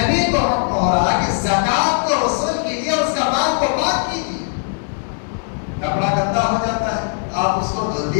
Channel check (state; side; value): silent; right; digital silence